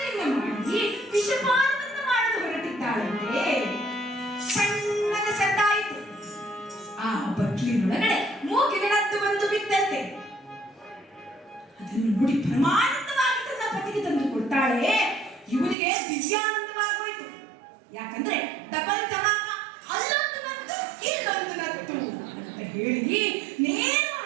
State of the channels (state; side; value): drops out; left; at 15.8 s